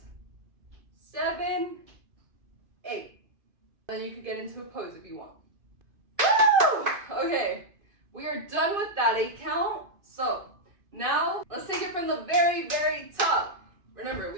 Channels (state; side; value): late; left; 2.5 ms